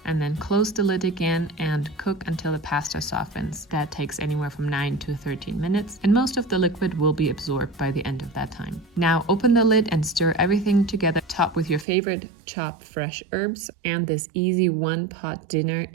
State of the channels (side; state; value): left; drops out; at 11.9 s